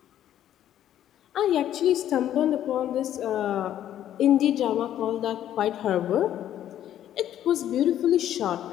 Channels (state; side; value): quieter; right; 11.4 dB